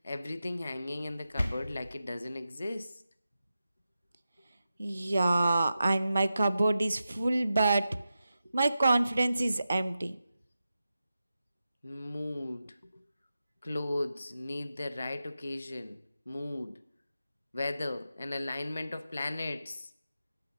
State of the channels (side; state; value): both; inverted; correlation -0.91